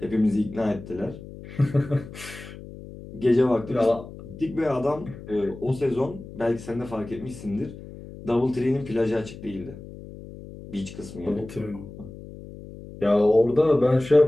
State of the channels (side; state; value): left; noise; hum, 15 dB below the sound